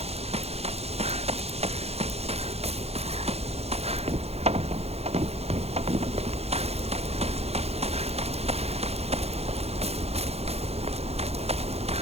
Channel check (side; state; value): left; late; 0.30 ms